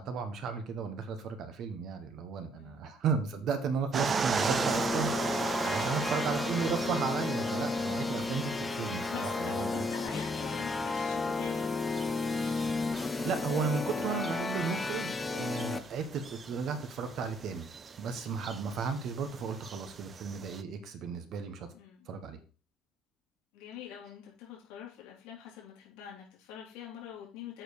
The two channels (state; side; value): normal; both; correlation 0.68